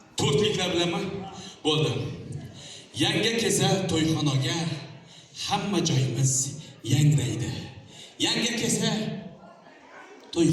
To'rtliklar bilanmi? Bo'ldi. Yangi kelsa to'yxonaga hamma joyimiz yangraydi. Yangi kelsa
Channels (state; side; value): identical; both; correlation 1.00